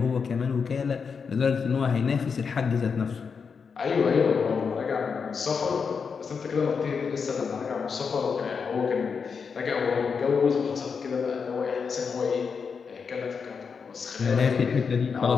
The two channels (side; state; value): right; quieter; 5.8 dB